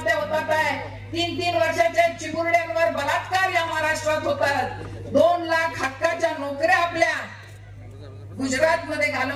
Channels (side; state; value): both; identical; correlation 1.00